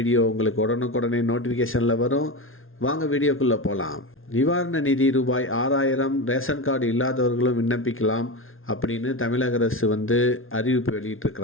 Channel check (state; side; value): late; right; 0.60 ms